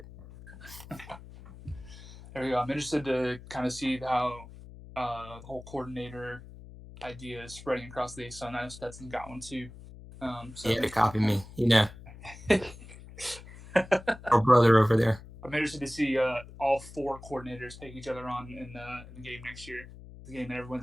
There we go. I'm interested to kind of see how the whole coordinator idea is spreading across the ASUN. I know Stetson got one too. So Yeah, to copy me, you know, I'm our brother over there. interested to see all four coordinators take each other on in the game next year. The game that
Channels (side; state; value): left; noise; hum, 17 dB below the sound